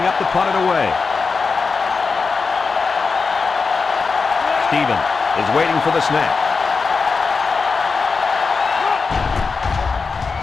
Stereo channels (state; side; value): quieter; right; 4.7 dB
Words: up to punt it away. Steven is waiting for the snap.